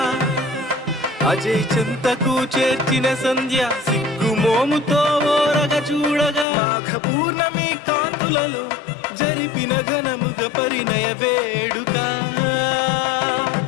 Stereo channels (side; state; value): right; drops out; at 6.5 s